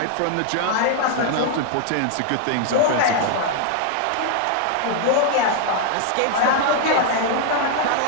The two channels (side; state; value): both; different; correlation 0.00